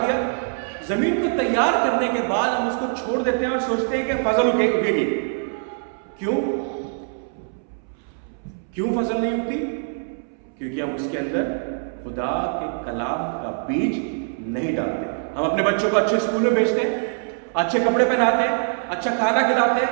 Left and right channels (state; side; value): silent; left; 63 dB below the other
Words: दिया, जमीन को तैयार करने के बाद हम उसको छोड़ देते हैं और सोचते हैं कि फसल उगेगी। क्यों फसल नहीं उगती? क्योंकि हम उसके अंदर खुदा के कलाम का बीज नहीं डालते। हम अपने बच्चों को अच्छे स्कूल में भेजते हैं, अच्छे कपड़े पहनाते हैं, अच्छा खाना खिलाते हैं,